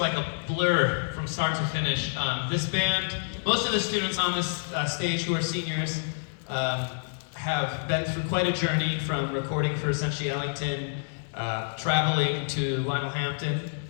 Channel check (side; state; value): right; silent; digital silence